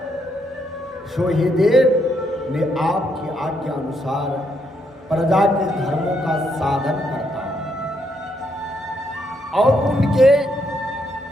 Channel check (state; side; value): normal; both; correlation 0.76